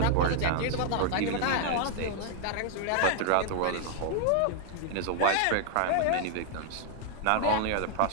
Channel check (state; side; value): different; both; correlation 0.00